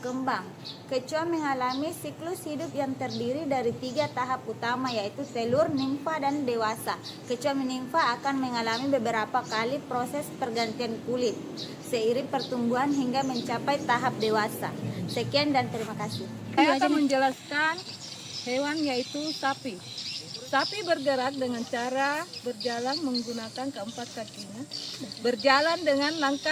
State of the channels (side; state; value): both; identical; correlation 1.00